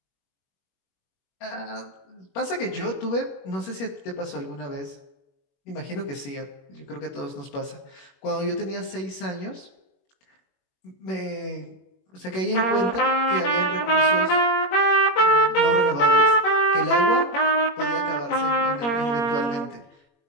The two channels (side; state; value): right; late; 21 ms